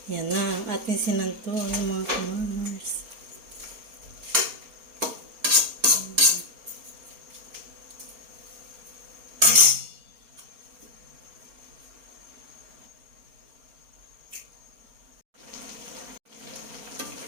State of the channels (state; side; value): late; left; 4.3 ms